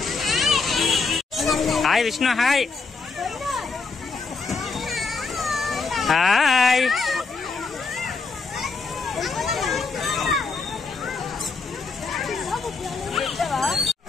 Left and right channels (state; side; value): quieter; right; 4.4 dB